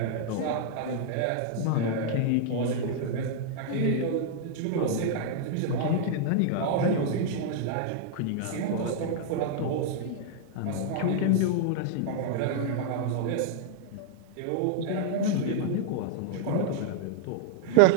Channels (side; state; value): both; different; correlation -0.01